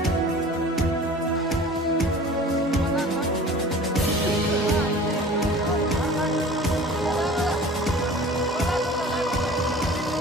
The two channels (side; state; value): both; normal; correlation 0.43